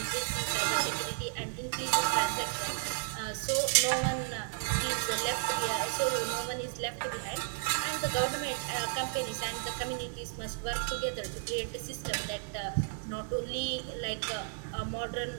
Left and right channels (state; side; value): silent; left; digital silence